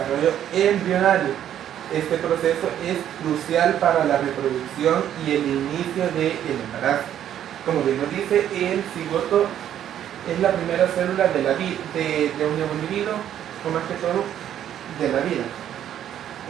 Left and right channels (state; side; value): quieter; left; 10.6 dB